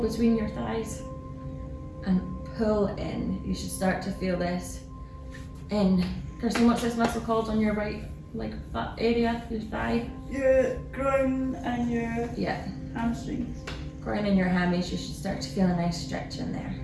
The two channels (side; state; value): both; identical; correlation 1.00